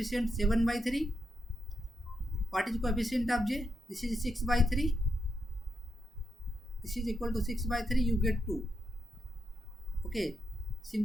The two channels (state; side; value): normal; both; correlation 0.84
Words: 7/3. What is coefficient of j? This is 6/3. This is equal to 6/3. You get 2. Okay,